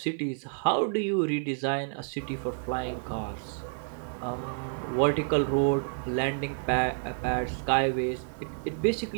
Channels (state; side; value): silent; left; digital silence